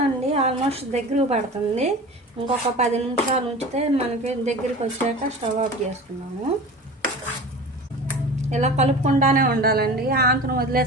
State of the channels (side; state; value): both; normal; correlation 0.36